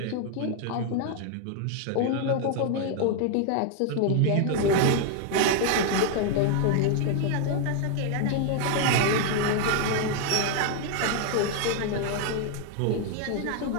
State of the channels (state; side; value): different; both; correlation 0.00